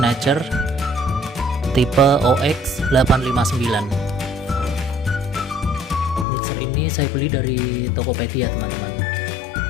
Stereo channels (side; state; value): right; drops out; at 6.2 s